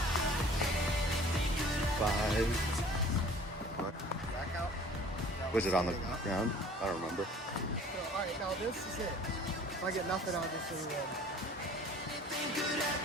5. back out. Was it on the ground? I don't remember. So, alright, now this is it. If I get nothing, I'll just win.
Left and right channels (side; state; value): both; normal; correlation 0.49